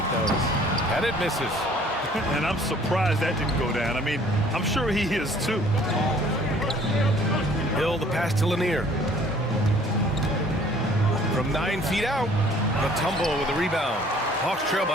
those. And it misses. And I'm surprised that didn't go down. I mean, I'm sure he is too. Hill, the pass to Lanier. From 9 feet out, Mutombo with the rebound. Hawks trail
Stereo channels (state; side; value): normal; both; correlation 0.55